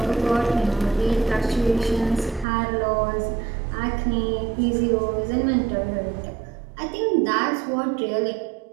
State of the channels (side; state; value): left; drops out; at 2.5 s